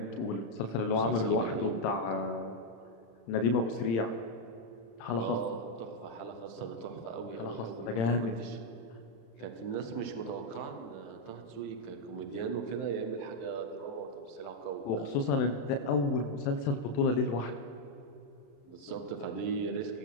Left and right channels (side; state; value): right; late; 35 ms